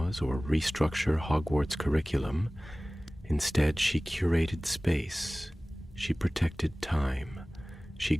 or restructure Hogwarts' curriculum. Instead, she curated space. She protected time. She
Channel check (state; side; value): normal; both; correlation 0.98